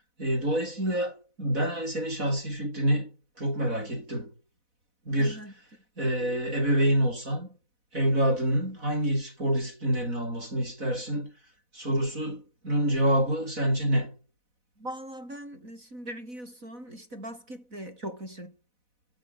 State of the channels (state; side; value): late; left; 4.0 ms